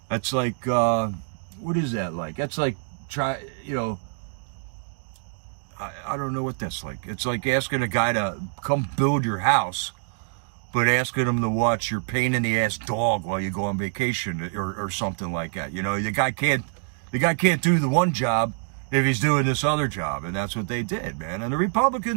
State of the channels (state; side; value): silent; left; 61 dB below the other